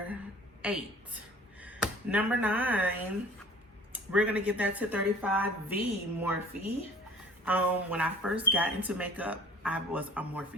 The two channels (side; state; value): both; normal; correlation 0.48